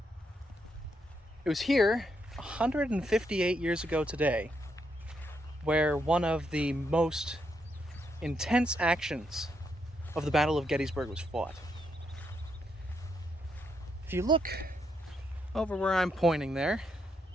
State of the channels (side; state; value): both; normal; correlation 0.78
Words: It was here 158 years ago today where one of the most intense actions of the Battle of Gettysburg was fought. If you look over where I'm pointing there,